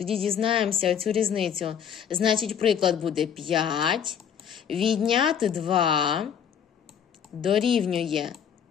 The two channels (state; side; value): quieter; right; 8.2 dB